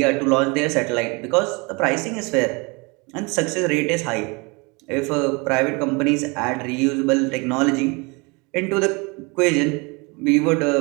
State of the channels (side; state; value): left; quieter; 28.8 dB